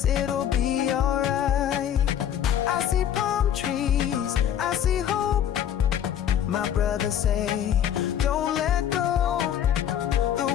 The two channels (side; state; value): right; quieter; 9.9 dB